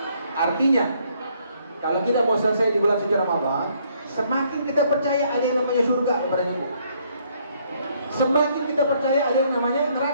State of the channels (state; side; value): inverted; both; correlation -0.68